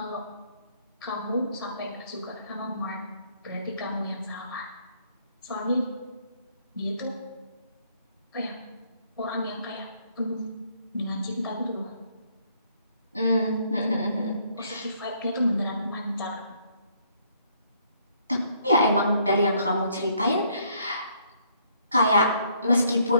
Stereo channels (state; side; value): inverted; both; correlation -0.67